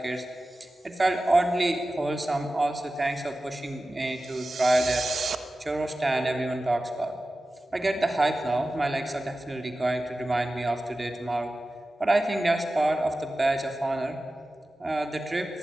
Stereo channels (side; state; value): both; normal; correlation 0.95